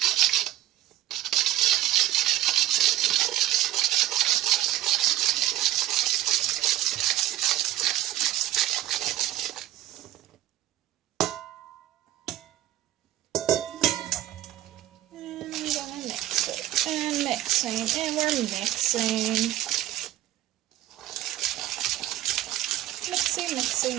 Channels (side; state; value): left; quieter; 13.8 dB